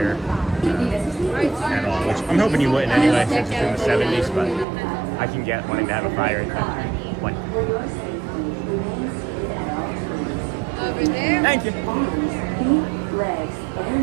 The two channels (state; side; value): drops out; left; at 4.7 s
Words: at all. Which I'm hoping you wouldn't anyway, since it's in the 70s, but I can get wanting to have a fire in one. Thank you.